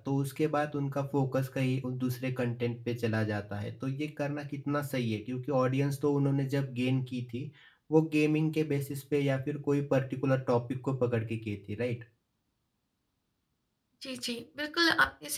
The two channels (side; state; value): both; identical; correlation 1.00